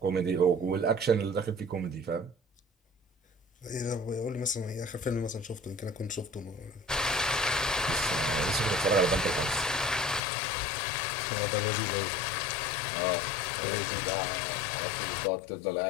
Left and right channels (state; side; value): drops out; right; at 10.2 s